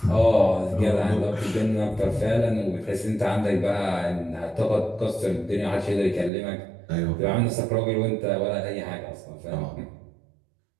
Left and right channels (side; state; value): left; drops out; at 6.3 s